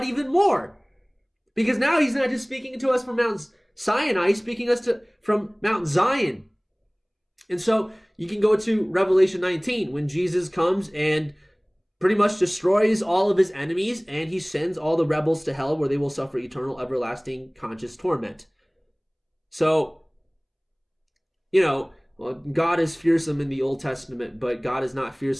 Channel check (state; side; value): identical; both; correlation 1.00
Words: even more. Because now he's not just speaking to us from Mount Sinai, he's speaking us from Mount Zion. And so you can go to Revelation 19 when Jesus comes and pretty much destroys all of his enemies and he sends all the rebels to hell where they will suffer eternal, everlasting, conscious torment. So, God is fearsome in the Old Testament, but God is not